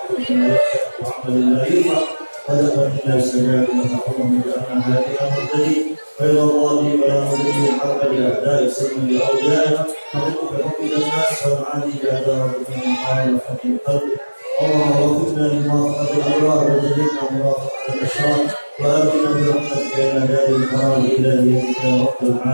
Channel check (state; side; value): inverted; both; correlation -1.00